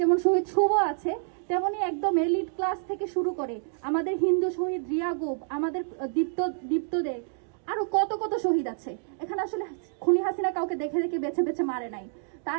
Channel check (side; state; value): left; silent; digital silence